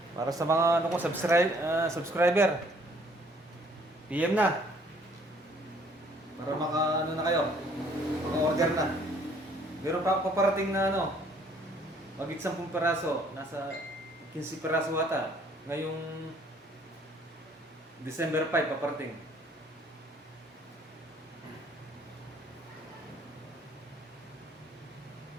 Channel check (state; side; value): normal; both; correlation 0.60